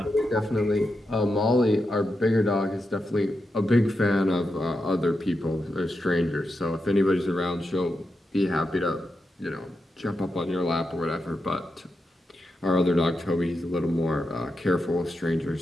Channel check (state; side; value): normal; both; correlation 0.87